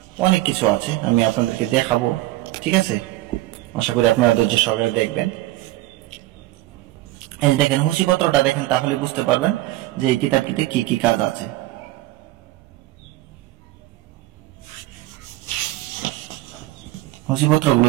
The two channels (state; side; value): quieter; left; 17.4 dB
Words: অনেক কিছু আছে, আমি আপনাদেরকে দেখাবো, ঠিক আছে। আশা করি আপনারা ধৈর্য সহকারে দেখবেন। এই দেখেন, হুঁশিপত্রটা দেখেন, তাহলে বুঝতে পারবেন যে এই কিতাবটিতে কি কি কাজ আছে। হুঁশিপত্রগুলো